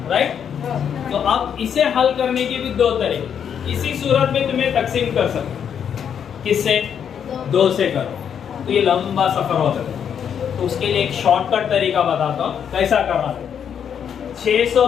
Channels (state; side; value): quieter; right; 8.1 dB